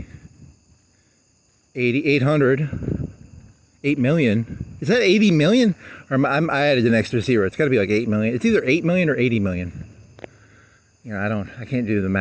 800. 8 million. Is that 80 million? Or I added an extra zero. It's got to be like 8 million. It's either 8 million or 80 million. I can't do the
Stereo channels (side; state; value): both; identical; correlation 1.00